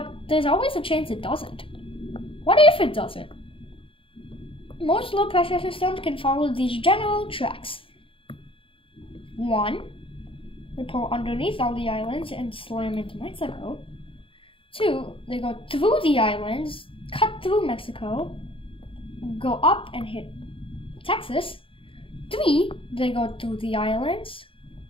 there's always a chance it doesn't. What if it doesn't? Most low-pressure systems can follow these general tracks. 1. They pull underneath all the islands and slam into Mexico. 2. They go through the islands, cut through Mexico, go up and hit Texas. 3. They go through the islands,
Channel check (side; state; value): right; late; 0.26 ms